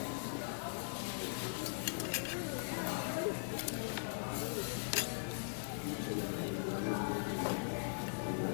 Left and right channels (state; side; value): silent; right; digital silence